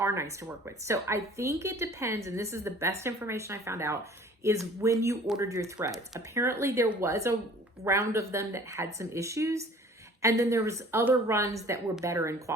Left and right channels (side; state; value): both; normal; correlation 0.49